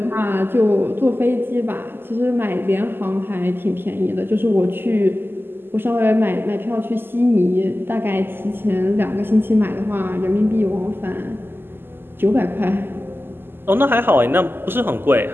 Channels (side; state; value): left; late; 0.10 ms